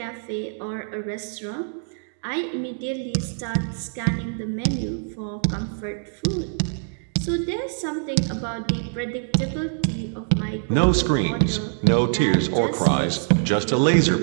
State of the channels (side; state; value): left; silent; digital silence